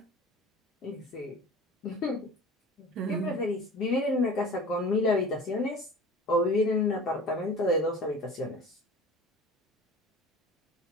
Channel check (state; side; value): normal; both; correlation 0.39